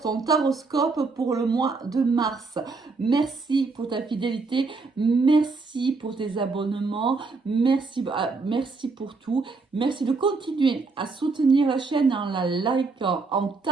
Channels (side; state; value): left; quieter; 4.1 dB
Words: taroscope pour le mois de mars. Merci pour ta fidélité, merci pour tes abonnements, merci pour tout. Merci de continuer à soutenir la chaîne en la likant, en